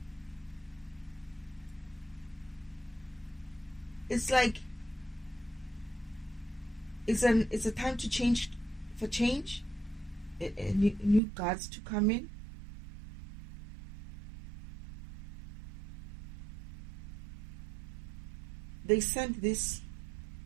It's like it's a time to change, for change, new guards to come in. They sent this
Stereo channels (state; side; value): drops out; left; at 11.2 s